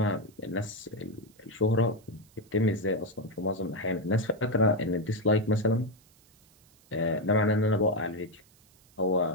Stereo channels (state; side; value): noise; right; hiss, 30 dB below the sound